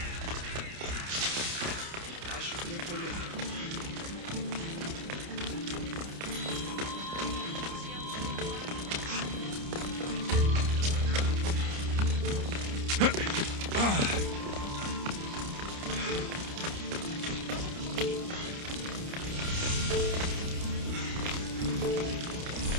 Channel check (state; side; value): late; left; 29 ms